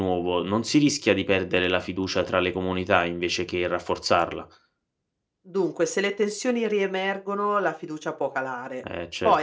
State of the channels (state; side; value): identical; both; correlation 1.00